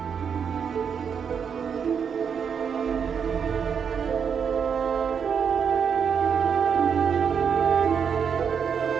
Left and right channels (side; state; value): left; quieter; 7.0 dB